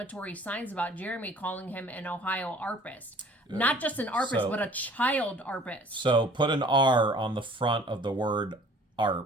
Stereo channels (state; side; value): normal; both; correlation 0.51